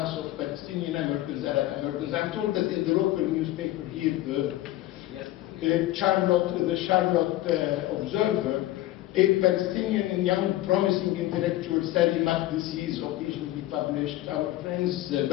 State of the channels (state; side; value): quieter; right; 15.7 dB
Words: of Palestinian Americans, Arab Americans. I'm told that in the local newspaper here, the Charlotte Observer, a Palestinian and young promising intellectual, Sally Makdisi, is occasionally published. Our friends